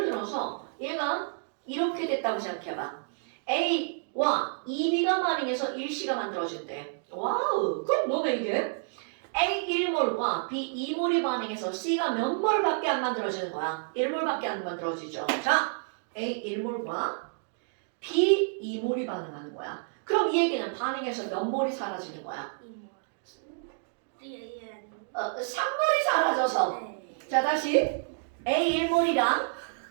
들어서 얘가 이렇게 됐다고 생각해봐. A와 2B가 반응해서 1C가 만들어진대. 와우, 그럼 너네 이게 A 1몰과 B 2몰이 반응해서 C가 몇 몰밖에 안 만들어지는 거야? 1몰밖에 안 만들어지죠. 자, A 1몰과 B 2몰이 반응하는 거야. 그럼 이 얘기는 반응해서 몇 몰이 사라지는 거야? 3몰이 사라져서. 자, 다시 A 1몰이랑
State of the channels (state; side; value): silent; left; digital silence